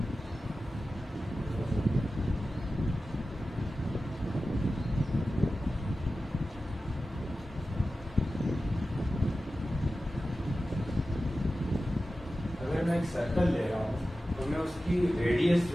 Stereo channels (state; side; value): normal; both; correlation 0.94